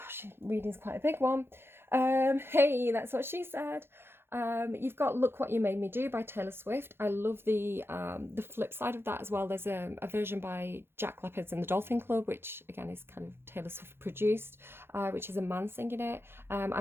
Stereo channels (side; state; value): left; late; 0.11 ms